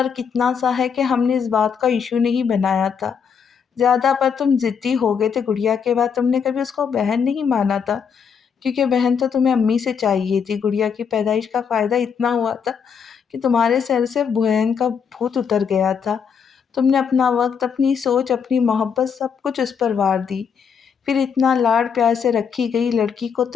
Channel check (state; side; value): quieter; right; 6.8 dB